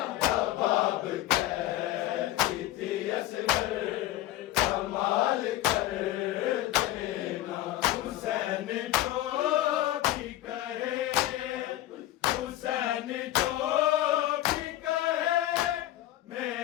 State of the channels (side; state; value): right; quieter; 14.8 dB